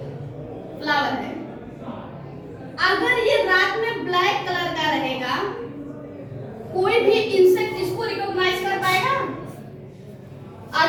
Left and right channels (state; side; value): identical; both; correlation 1.00